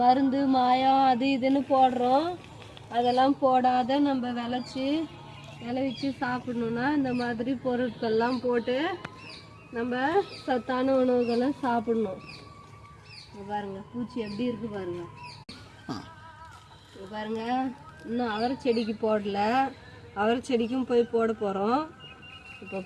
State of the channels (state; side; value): identical; both; correlation 1.00